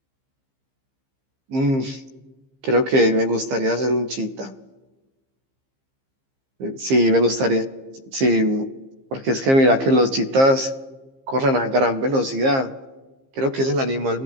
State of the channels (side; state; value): left; late; 15 ms